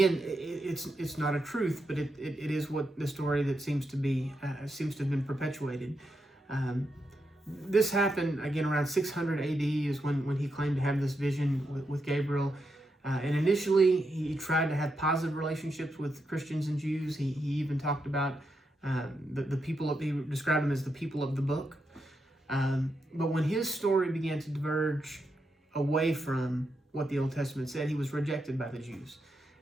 it's not a truth, but it is what the story that seems to have been perpetuated. This happened again around 600 AD is when he claimed to have this vision with Gabriel. And initially, he tried to have positive relationships with Christians and Jews. He even talked about the people, he described them as the people of the book. But when his story began to diverge away from what the Old Testament said, he was rejected by the Jews.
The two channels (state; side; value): normal; both; correlation 0.84